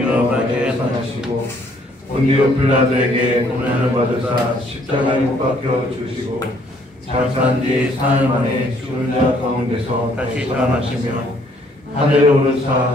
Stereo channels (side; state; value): both; normal; correlation 0.65